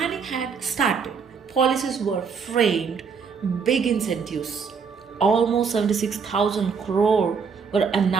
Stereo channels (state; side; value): quieter; left; 5.8 dB